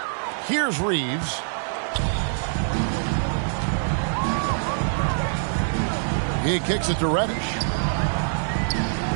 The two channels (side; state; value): left; silent; digital silence